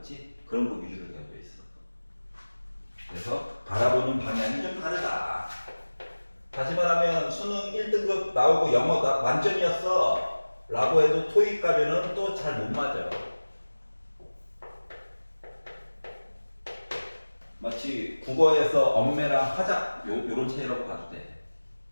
그런 거 위주로 되어 있어. 그래서 바라보는 방향이 좀 다르다. 다시 말하면 수능 1등급 나오고 영어 만점이었어 라고 해도 토익 가면은 또 잘 못 맞아. 마치 국어에서 엄매랑 화작 요런 차이라고 봐도 돼.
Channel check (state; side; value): inverted; both; correlation -1.00